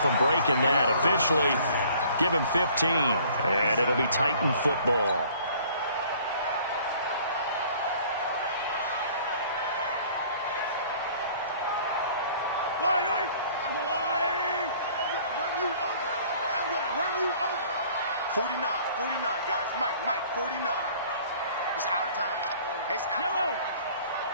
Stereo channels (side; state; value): both; inverted; correlation -0.54